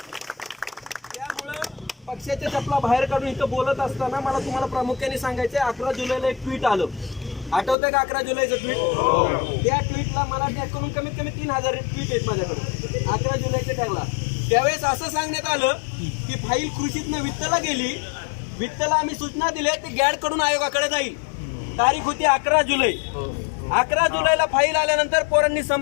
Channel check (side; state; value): right; drops out; at 7.8 s